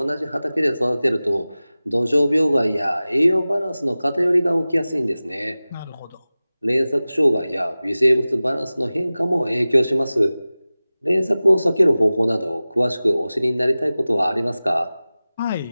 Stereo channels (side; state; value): both; inverted; correlation -0.97